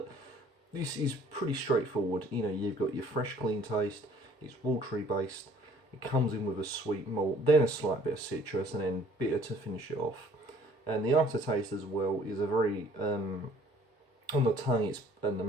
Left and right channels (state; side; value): normal; both; correlation 0.55